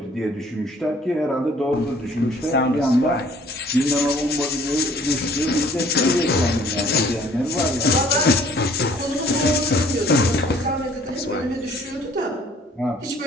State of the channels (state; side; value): normal; both; correlation 0.56